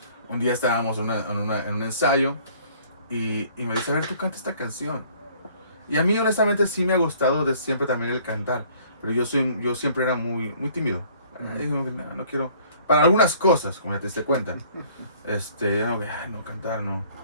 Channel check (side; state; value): both; inverted; correlation -0.57